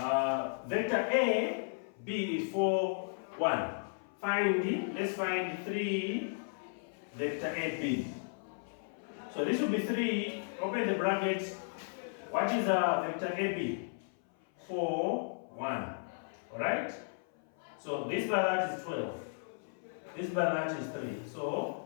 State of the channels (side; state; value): right; silent; 55 dB below the other